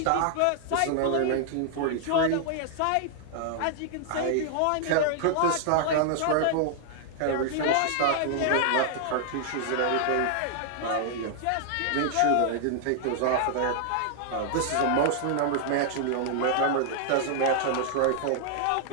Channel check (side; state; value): both; different; correlation -0.01